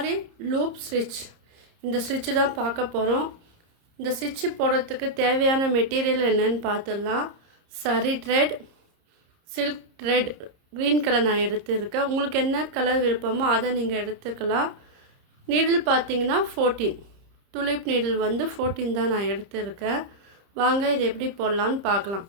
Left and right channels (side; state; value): left; late; 30 ms